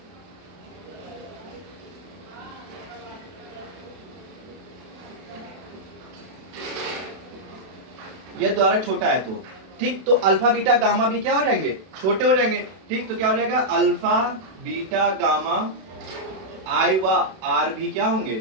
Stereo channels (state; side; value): late; left; 32 ms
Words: ये द्वारक छोटा है तो ठीक, तो अल्फा बीटा गामा भी क्या हो जाएंगे, छोटे हो जाएंगे। ठीक, तो क्या हो जाएगा, अल्फा बीटा गामा आई व आर भी क्या होंगे,